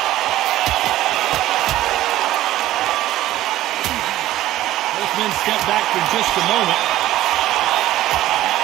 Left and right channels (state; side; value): quieter; left; 14.7 dB